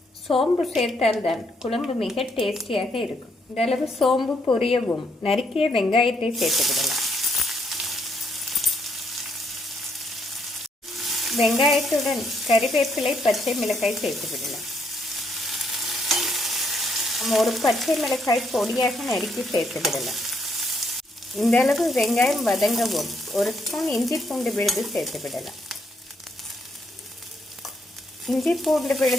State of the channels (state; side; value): normal; both; correlation 0.73